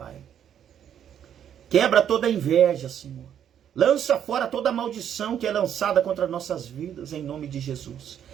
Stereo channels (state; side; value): quieter; left; 9.4 dB